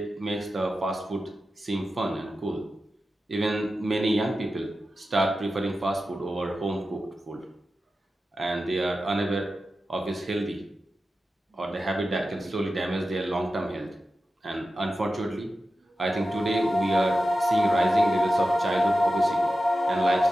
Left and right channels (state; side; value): normal; both; correlation 0.93